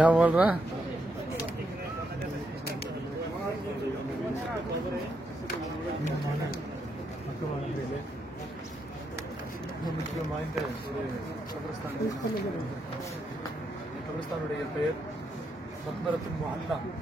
बोल रहा है? கபிரஸ்தானுடைய பெயர் மக்பரத்துல் முஅல்லா.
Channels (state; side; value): normal; both; correlation 0.80